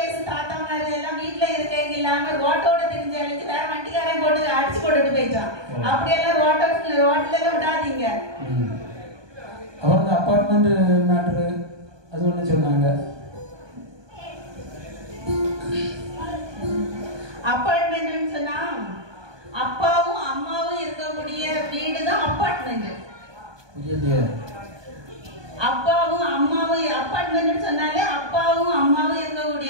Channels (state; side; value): late; left; 1.2 ms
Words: தாத்தா மாதிரி எல்லாம் வீட்டுல இருக்க இல்லாம ரோட்டோட தெரிஞ்சாலும் வேற வண்டிக்காரன் போட்டு அடிச்சு போட்டுட்டு போயிட்டான். அப்படியெல்லாம் ரோட்ல எல்லாம் விடாதீங்க. அவங்க அப்பார்ட்மெண்ட் மேட்ரு அது ஒண்ணு சொன்னாங்க. அப்பார்ட்மெண்ட் சொன்னா அப்பாவும் அம்மாவும் இருக்கக்கூடிய வீடு தான் அப்பார்ட்மெண்ட். அப்பாவும் அம்மாவும் அப்பார்ட்மெண்ட் சொன்னாலே அப்பாவும் அம்மாவும்